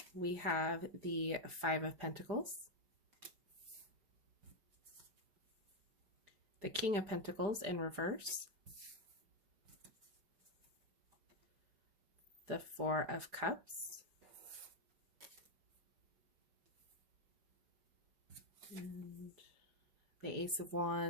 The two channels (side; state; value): left; late; 4.9 ms